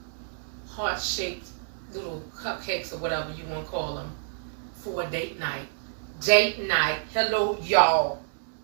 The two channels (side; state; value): left; silent; digital silence